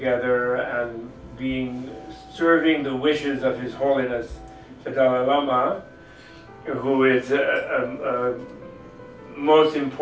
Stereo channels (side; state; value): both; identical; correlation 1.00